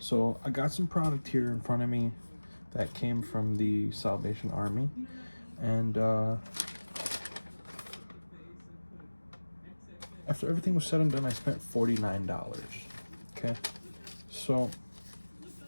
I got some product here in front of me that came from the Salvation Army, and after everything was said and done, I spent $49. Okay, so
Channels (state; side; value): inverted; both; correlation -1.00